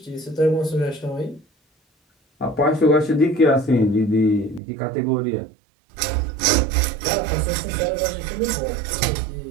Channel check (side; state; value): left; drops out; at 4.6 s